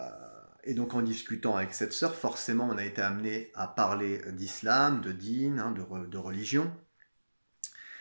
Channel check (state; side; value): inverted; both; correlation -1.00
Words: donc en discutant avec cette sœur, forcément on a été amené à parler d'islam, de dîn, de religion.